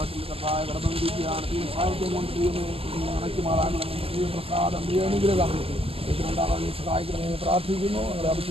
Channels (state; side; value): late; left; 0.28 ms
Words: കർത്തായ കടന്നു വിരിക്കുകയാണ് ഈ സാഹിത്യം കൊണ്ട് ഉണക്കി മാറാനുള്ള പ്രസാദം അനുഗ്രഹം ഇതിനുണ്ടാകാൻ സഹായിക്കണമേ പ്രാർത്ഥിക്കുന്നു. ഞങ്ങളുടെ